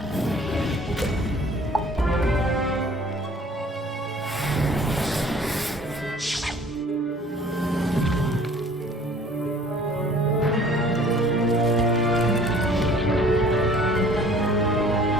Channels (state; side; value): normal; both; correlation 0.52